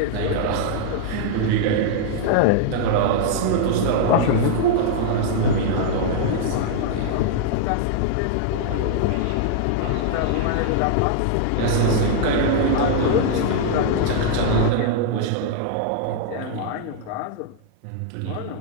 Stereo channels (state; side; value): different; both; correlation -0.01